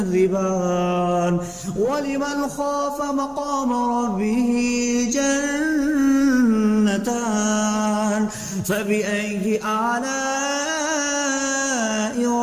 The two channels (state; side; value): identical; both; correlation 1.00